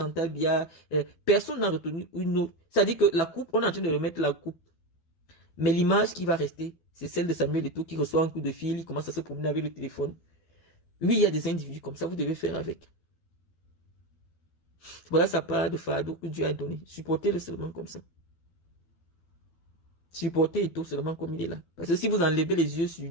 Biya. Personne n'a retenu une autre. C'est-à-dire que la coupe, on est en train de remettre la coupe. Mais l'image qui va rester, c'est celle de Samuel Eto'o qui reçoit un coup de fil, il commence à se promener avec le téléphone. Oui, il y a des individus comme ça, vous devez faire avec. Voilà sa part de fardeau que Dieu a donné. Supportez-le seulement comme ça. Supportez Eto'o seulement comme il est là. Parce que si vous enlevez les yeux sur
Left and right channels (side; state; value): right; late; 12 ms